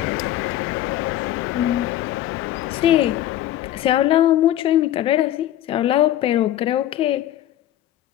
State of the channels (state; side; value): quieter; right; 12.8 dB